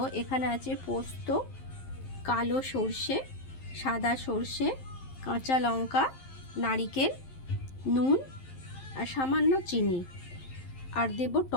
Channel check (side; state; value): right; late; 11 ms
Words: এখানে আছে পোস্ত, কালো সর্ষে, সাদা সর্ষে, কাঁচা লঙ্কা, নারকেল, নুন আর সামান্য চিনি, আর দেব